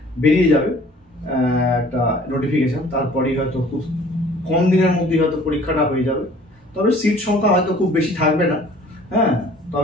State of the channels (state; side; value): normal; both; correlation 0.52